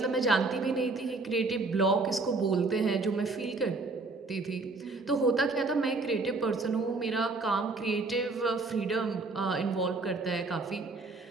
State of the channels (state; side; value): quieter; left; 3.6 dB